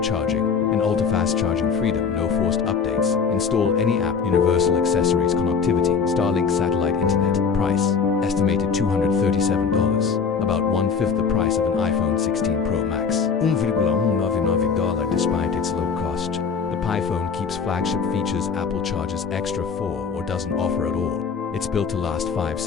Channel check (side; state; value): right; quieter; 5.9 dB